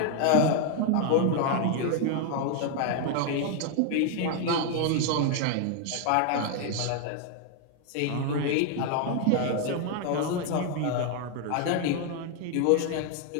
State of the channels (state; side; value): different; both; correlation 0.00